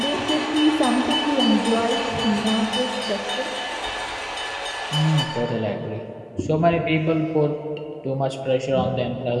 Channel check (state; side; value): identical; both; correlation 1.00